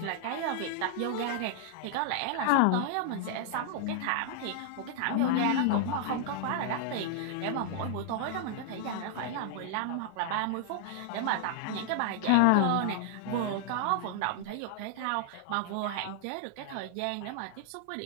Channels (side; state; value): both; different; correlation -0.01